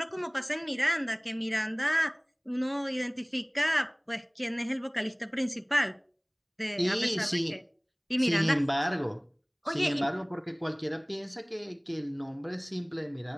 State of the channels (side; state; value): both; identical; correlation 1.00